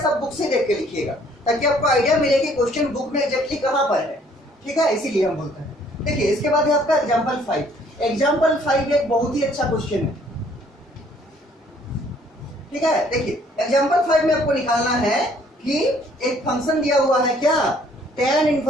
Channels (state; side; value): normal; both; correlation 0.61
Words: सब बुक से देख के लिखिएगा ताकि आपको आइडिया मिले कि क्वेश्चन बुक में एग्जैक्टली कहां पर है। ठीक है, इसीलिए हम बोलते हैं। देखिए इसके बाद है आपका एग्जाम्पल 5। एग्जाम्पल 5 एक बहुत ही अच्छा क्वेश्चन है, ठीक है। देखिए एग्जाम्पल 5 में आपको निकालना है कि एक फंक्शन दिया हुआ है क्या, tan